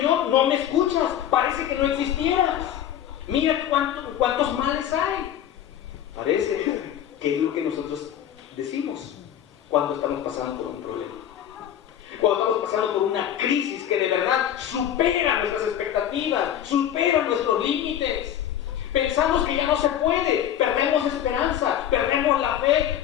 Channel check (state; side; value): quieter; right; 10.5 dB